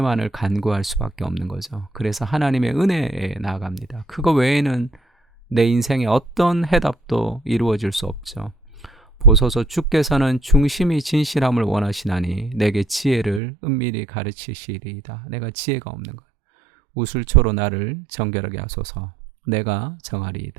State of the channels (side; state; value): left; drops out; at 13.4 s